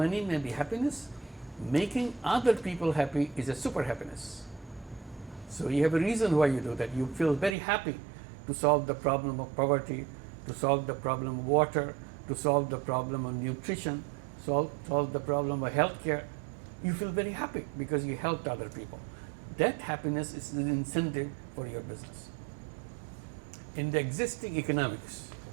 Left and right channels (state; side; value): drops out; left; at 7.6 s